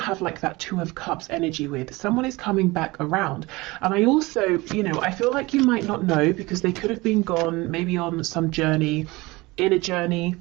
like that Two of Cups energy with. Someone is coming back around. And I also, I feel like you might not know because they could have been gone maybe on some journey, inner journey,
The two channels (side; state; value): left; quieter; 22.2 dB